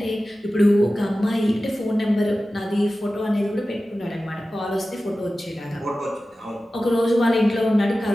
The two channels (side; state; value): both; normal; correlation 0.95